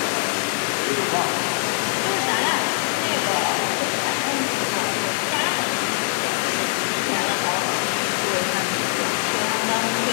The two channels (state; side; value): silent; right; 64 dB below the other